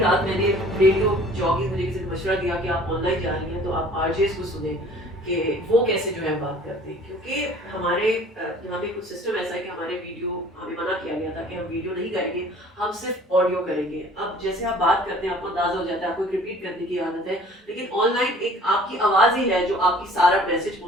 मैंने रेडियो जॉगिंग, मुझे किसी ने मशवरा दिया कि आप ऑनलाइन जा रही हैं तो आप आरजेस को सुने कि वो कैसे जो है बात करते हैं, क्योंकि हमारे यहाँ पे कुछ सिस्टम ऐसा है कि हमारे वीडियो, हमें मना किया गया था कि हम वीडियो नहीं करेंगे, हम सिर्फ ऑडियो करेंगे। अब जैसे आप बात करते हैं आपको अंदाजा हो जाता है, आपको रिपीट करने की आदत है, लेकिन ऑनलाइन एक आपकी आवाज़ ही है जो आपकी सारा मैसेज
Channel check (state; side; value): normal; both; correlation 0.51